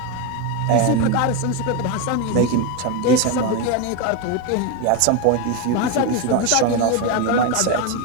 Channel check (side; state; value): both; different; correlation 0.03